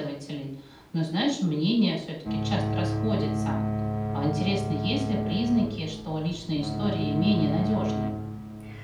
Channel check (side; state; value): both; identical; correlation 1.00